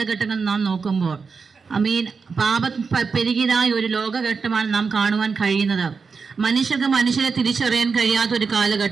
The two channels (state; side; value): quieter; left; 5.1 dB